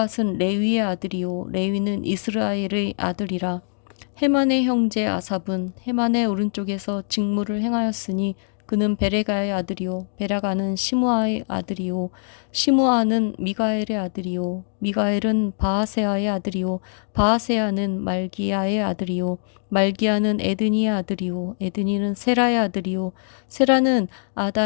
레위의 아들이요 레위는 이스라엘의 아들이라. 헤만의 형제 아삽은 헤만의 오른쪽에서 직무를 행하였으니 그는 베레가의 아들이요 베라가는 시므아의 아들이요 시므아는 미가엘의 아들이요 미가엘은 바하세아의 아들이요 바하세아는 말기야의 아들이요 말기야는 에드니의 아들이요 에드니는 세라의 아들이요 세라는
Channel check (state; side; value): silent; right; 61 dB below the other